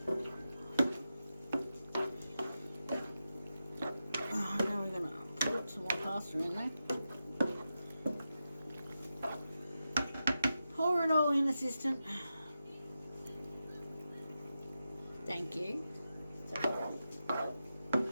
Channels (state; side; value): inverted; both; correlation -0.90